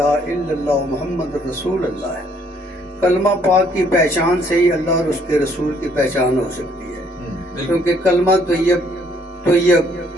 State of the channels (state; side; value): normal; both; correlation 0.65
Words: الا اللہ محمد رسول اللہ ہے۔ کلمہ پاک کی پہچان سے ہی اللہ اور اس کے رسول کی پہچان ہو سکتی ہے، کیونکہ کلمہ طیب